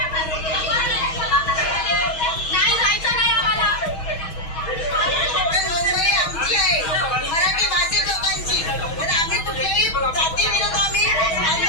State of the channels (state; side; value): late; right; 6.2 ms